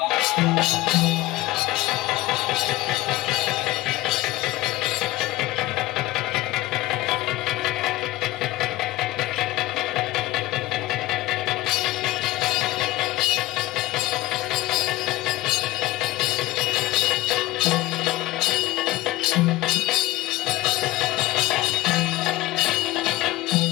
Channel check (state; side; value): quieter; right; 17.6 dB